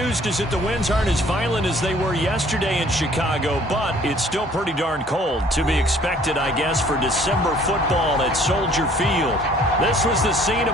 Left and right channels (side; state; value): both; normal; correlation 0.56